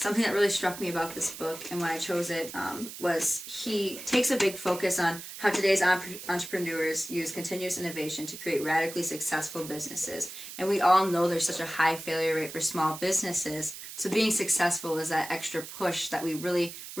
that really struck me about this book and when I chose it was he takes a big focus on how today's entrepreneurs use continuous innovation to create radically successful businesses. And we all know there's such a high failure rate for small businesses. So being successful is that extra push that we really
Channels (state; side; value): noise; right; hiss, 11 dB below the sound